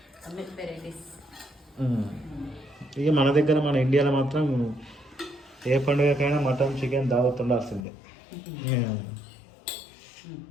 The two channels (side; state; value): right; drops out; at 7.8 s